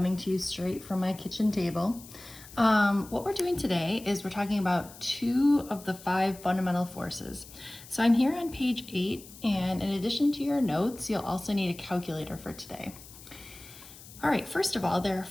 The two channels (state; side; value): noise; left; hiss, 18 dB below the sound